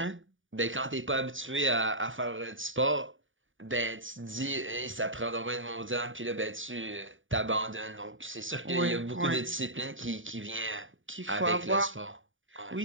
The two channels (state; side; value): late; left; 0.57 ms